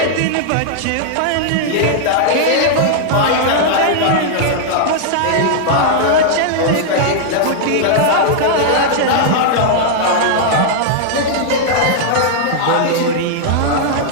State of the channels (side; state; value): both; different; correlation -0.01